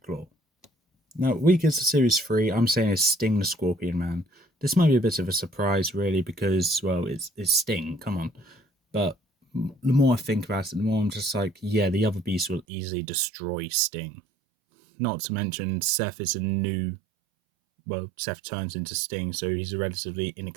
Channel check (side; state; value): left; drops out; at 12.7 s